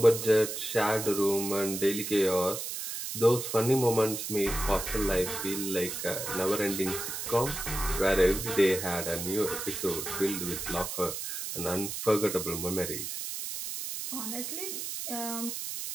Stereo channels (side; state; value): right; noise; hiss, 5 dB below the sound